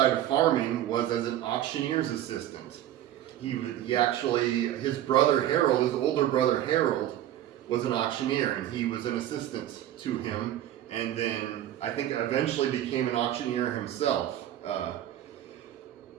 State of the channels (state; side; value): quieter; left; 12.3 dB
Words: of farming was as an auctioneer's assistant. His brother Harold, his older brother Harold, was an auctioneer, and he was an assistant to him, and then I think eventually became an auctioneer himself.